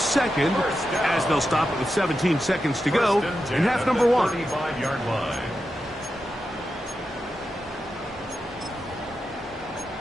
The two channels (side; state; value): both; normal; correlation 0.89